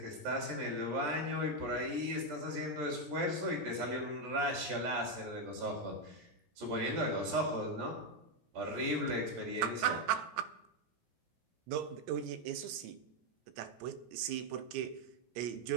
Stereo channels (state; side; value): late; left; 17 ms